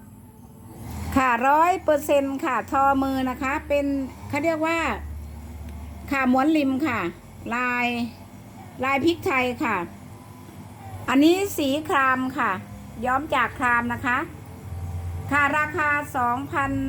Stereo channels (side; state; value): both; identical; correlation 1.00